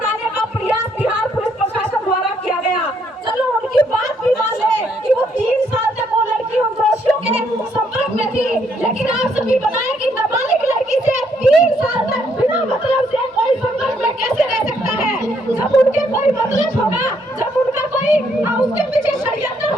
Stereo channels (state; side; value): normal; both; correlation 0.71